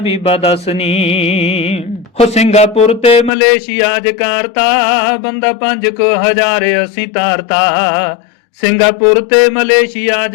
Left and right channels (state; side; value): drops out; right; at 3.3 s